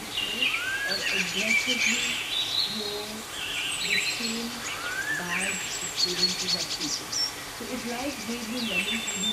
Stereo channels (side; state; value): both; identical; correlation 1.00